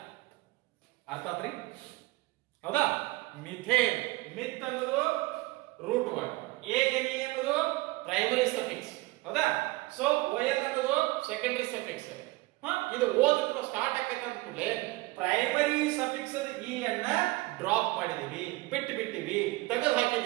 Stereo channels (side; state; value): left; quieter; 21.6 dB